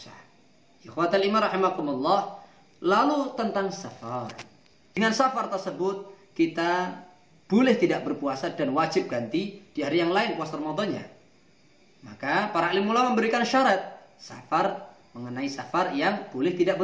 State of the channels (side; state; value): both; identical; correlation 1.00